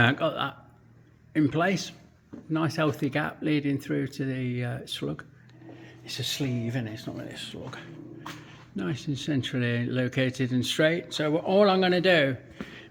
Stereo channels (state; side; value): identical; both; correlation 1.00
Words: in place. Nice healthy gap leading through to the slug. It's a sleeve, isn't it? It's not really a slug. Nice and centrally located and straight. So all I'm going to do